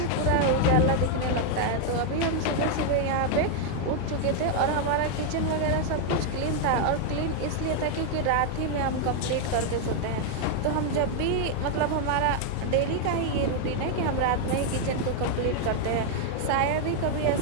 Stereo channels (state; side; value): different; both; correlation 0.00